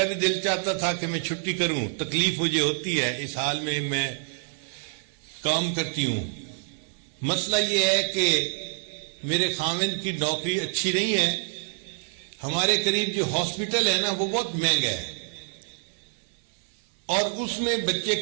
بھی دل چاہتا تھا کہ میں چھٹی کروں، تکلیف مجھے ہوتی ہے، اس حال میں کام کرتی ہوں۔ مسئلہ یہ ہے کہ میرے خاوند کی نوکری اچھی نہیں ہے، ہمارے قریب جو ہاسپٹل ہے نا وہ بہت مہنگا ہے اور اس میں بچے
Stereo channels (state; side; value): silent; left; digital silence